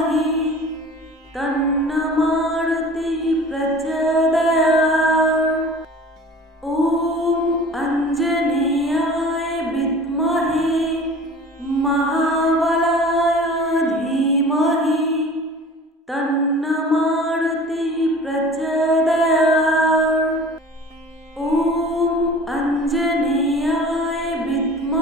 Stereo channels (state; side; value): normal; both; correlation 0.43